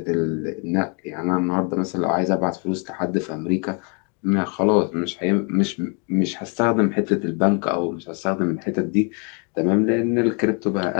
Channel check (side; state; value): right; quieter; 36.3 dB